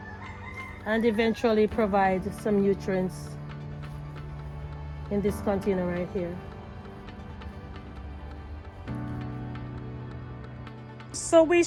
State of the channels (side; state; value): both; identical; correlation 1.00